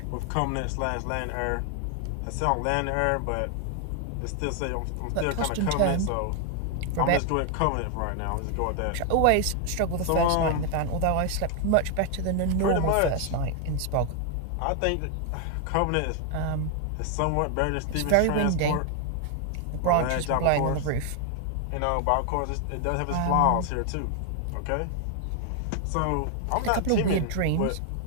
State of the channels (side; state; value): both; different; correlation 0.00